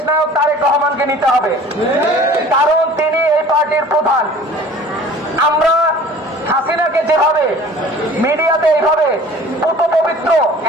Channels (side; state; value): both; normal; correlation 0.46